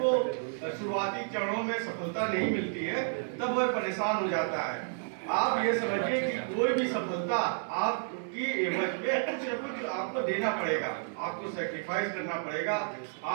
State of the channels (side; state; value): left; silent; digital silence